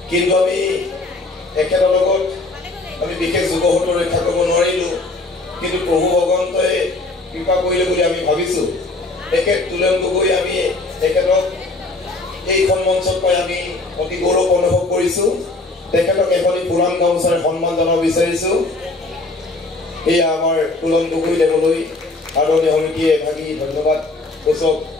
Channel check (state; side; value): quieter; right; 3.1 dB